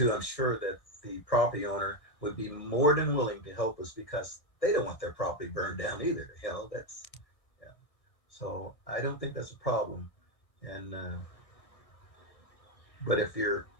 I'm sure that the property owner would be more than willing to help us, because they don't want their property burned down either. So I don't think that's a problem. And but if you're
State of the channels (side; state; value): right; late; 1.6 ms